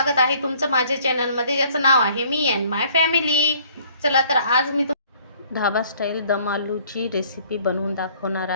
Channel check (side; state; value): both; inverted; correlation -0.58